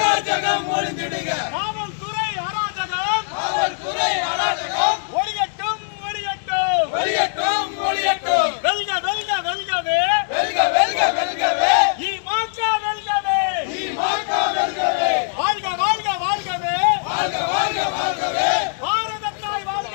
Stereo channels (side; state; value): right; silent; 65 dB below the other